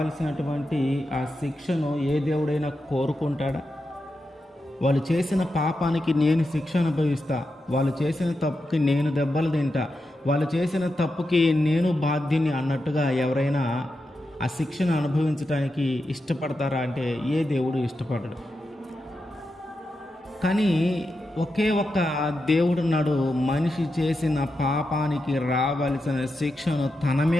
ఆ శిక్షను ఏ దేవుడైనా కోరుకుంటాడా? వాళ్ళు చేసిన పాపానికి నేను శిక్ష అనుభవిస్తా, వాళ్ళు చేసిన తప్పుకి నేను దెబ్బలు తింటా, వాళ్ళు చేసిన తప్పుకి నేను బాధ్యుని అన్నట్టుగా ఎవరైనా ఆ శిక్షను అనుభవించడానికి ఇష్టపడతారా అంటే ఏ దేవుడు ఇష్టపడడు. కానీ ఒకే ఒక్క దేవుడున్నాడు, మనిషి చేసిన పాపానికి రావాల్సిన శిక్షను తన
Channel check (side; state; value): both; normal; correlation 0.88